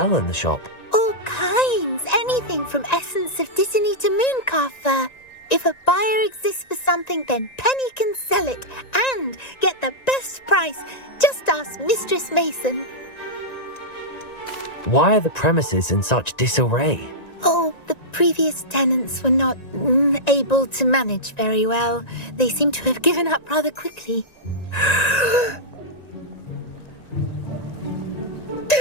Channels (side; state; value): right; late; 1.9 ms